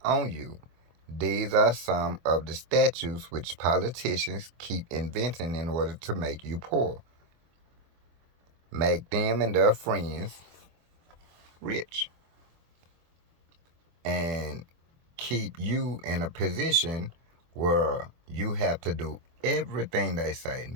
on you. These are some of the statutes which politicians keep inventing in order to make you poor, make them and their friends rich, and keep you in a position where you have to do everything they say,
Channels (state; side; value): late; left; 24 ms